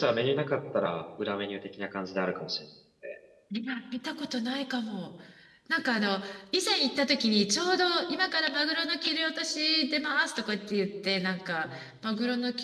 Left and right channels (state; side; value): identical; both; correlation 1.00